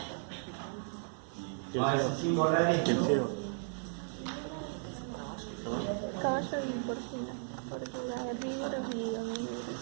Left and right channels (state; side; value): silent; left; 54 dB below the other